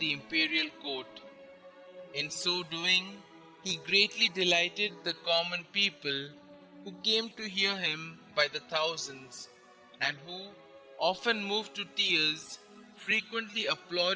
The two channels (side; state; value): both; identical; correlation 1.00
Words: imperial court. In so doing, he greatly delighted the common people, who came to hear him by the thousands, and who, often moved to tears, frequently